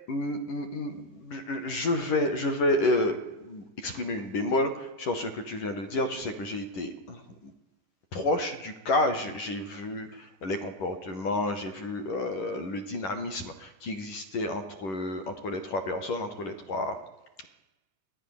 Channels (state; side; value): late; right; 11 ms